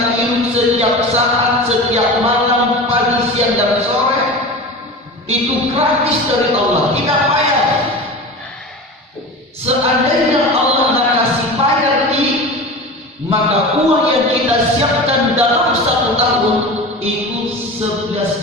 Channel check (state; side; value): normal; both; correlation 0.31